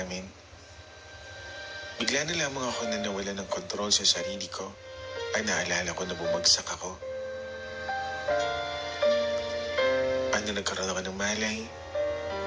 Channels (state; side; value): identical; both; correlation 1.00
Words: bigla na lamang ako na nawala ng kontrol sa sarili ko. Ay naalala ko na bumagsak ako. Ano, nagkaroon ako ng malay,